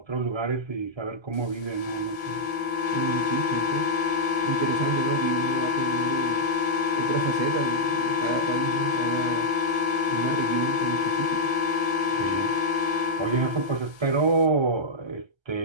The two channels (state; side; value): late; left; 1.3 ms